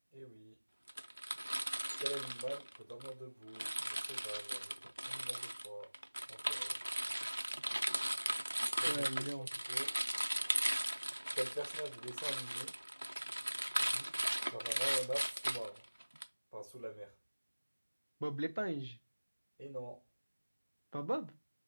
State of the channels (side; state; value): both; inverted; correlation -1.00